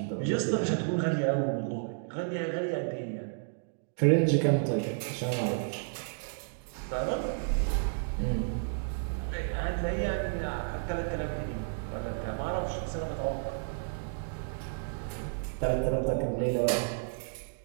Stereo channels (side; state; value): left; silent; digital silence